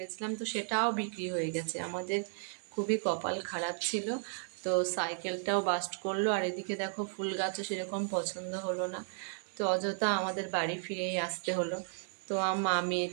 তো সেটাও বিক্রি হয়ে গেছে। আমাদের খুবই কপাল খারাপ ছিল। তো সাইকেলটাও বাস্ট করলো, আর এদিকে দেখো ফুল গাছও সেরকম পছন্দ হলো না, তো অযথা আমাদের বাড়ি ফিরেই আসতে হলো। তো মা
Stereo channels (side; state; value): left; silent; 55 dB below the other